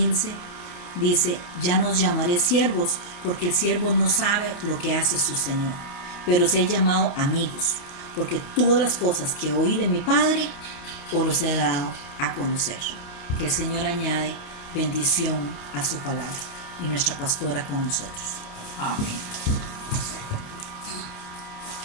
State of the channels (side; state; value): right; late; 29 ms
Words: dice: ya nos llamaré siervos, porque el siervo no sabe lo que hace su Señor, pero os he llamado amigos, porque todas las cosas que oí de mi Padre os los he dado a conocer. Que el Señor añade bendición a su palabra y nuestra pastora con nosotros. Amén.